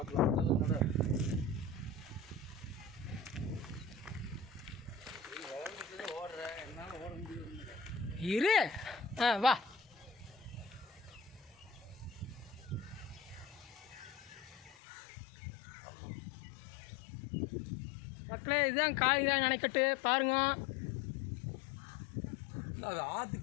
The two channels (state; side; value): drops out; right; at 14.8 s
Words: நட ஓடுறேன், என்னால் ஓட முடியும். இரு. வா. மக்களே, இதுதான் காளிங்கராயன் அணைக்கட்டு பாருங்க. அது